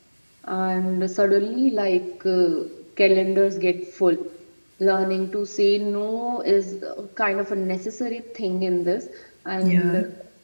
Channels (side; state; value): both; inverted; correlation -1.00